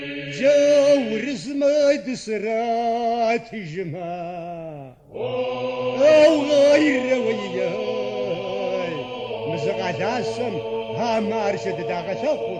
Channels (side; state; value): both; identical; correlation 1.00